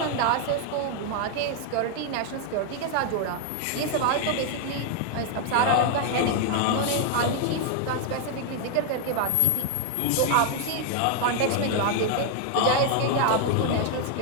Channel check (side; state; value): both; different; correlation 0.00